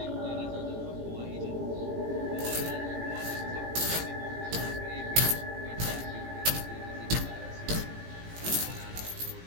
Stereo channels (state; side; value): late; left; 17 ms